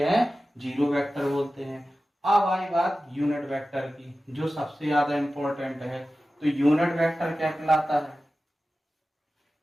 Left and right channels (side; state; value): both; normal; correlation 0.95